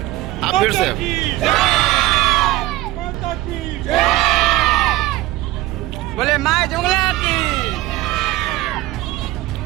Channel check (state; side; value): quieter; left; 17.2 dB